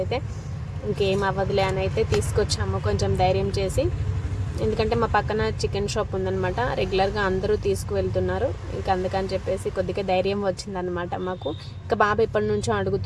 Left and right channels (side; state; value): both; identical; correlation 1.00